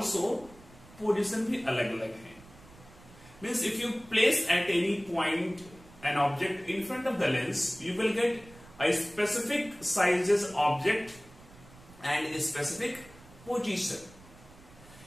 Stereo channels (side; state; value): right; noise; rumble, 22 dB below the sound